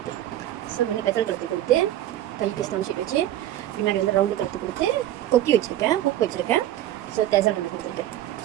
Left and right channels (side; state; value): left; quieter; 13.1 dB